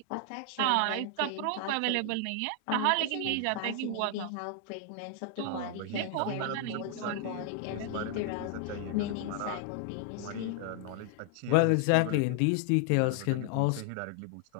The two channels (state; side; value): different; both; correlation 0.00